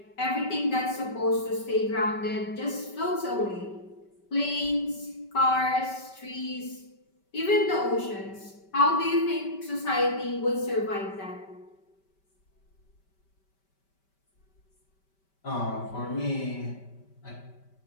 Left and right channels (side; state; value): right; late; 5.2 ms